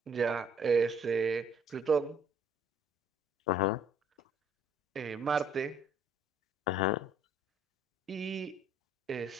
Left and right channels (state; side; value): normal; both; correlation 0.60